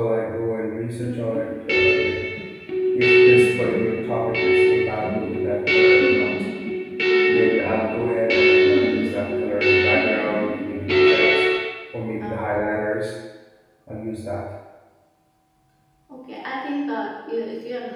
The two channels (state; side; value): identical; both; correlation 1.00